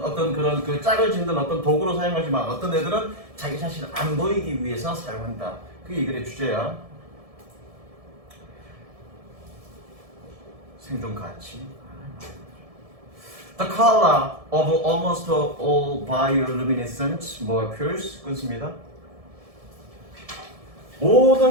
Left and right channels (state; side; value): late; left; 1.7 ms